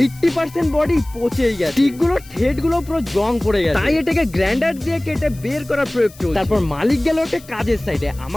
80% বডি পচেই গেছে, টিকগুলো ঠেটগুলো পুরো জং পড়ে গেছে। তাই এটাকে গ্রাইন্ডার দিয়ে কেটে বের করার প্রয়োগ চলছে। তারপর মালিক গেল একটা কাজের সাইডে,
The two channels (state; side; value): noise; left; hiss, 22 dB below the sound